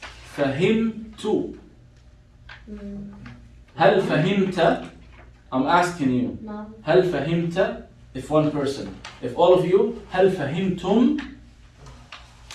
فهمت. هل فهمت? I'm asking you. no, هل فهمت? If one person. If all of you, هل فهمتم?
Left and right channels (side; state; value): both; identical; correlation 1.00